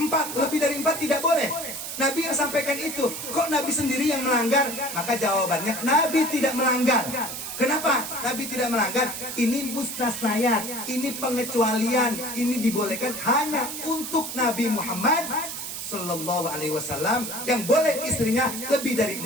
Lebih dari 4 tidak boleh. Nabi yang sampaikan itu. Kok Nabi sendiri yang melanggar? Maka jawabannya, Nabi tidak melanggar. Kenapa Nabi tidak melanggar? Ini mustasnayat, ini pengecualian, ini dibolehkan hanya untuk Nabi Muhammad Sallallahu Alaihi Wasallam, yang boleh istrinya lebih dari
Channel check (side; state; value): right; noise; hiss, 7 dB below the sound